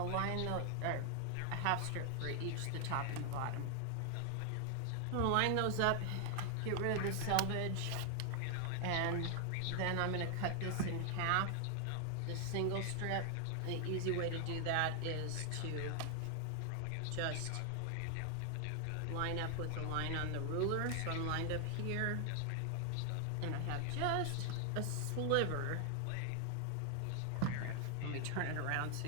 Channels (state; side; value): different; both; correlation 0.00